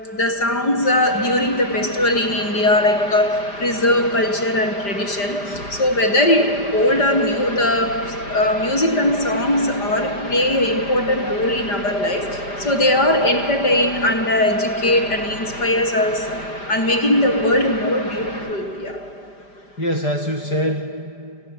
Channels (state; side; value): late; right; 5.0 ms